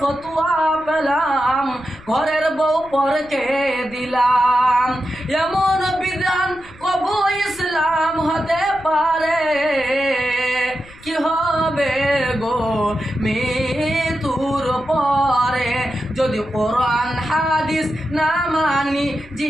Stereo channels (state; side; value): noise; left; rumble, 22 dB below the sound